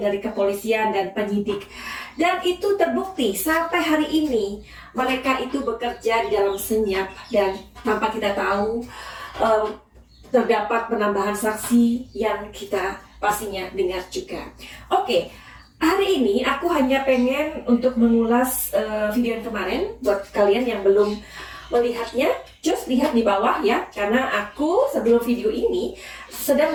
dari kepolisian dan penyidik. Dan itu terbukti sampai hari ini mereka itu bekerja di dalam senyap dan tanpa kita tahu terdapat penambahan saksi yang kita pastinya dengar juga. Oke, hari ini aku hanya pengen untuk mengulas video yang kemarin. Buat kalian yang belum melihatnya, just lihat di bawah ya, karena aku sebelum video ini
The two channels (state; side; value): identical; both; correlation 1.00